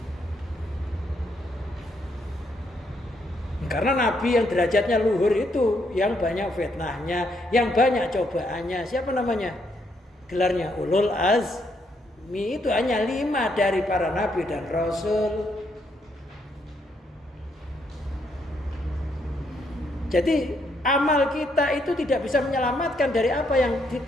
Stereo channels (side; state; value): both; normal; correlation 0.75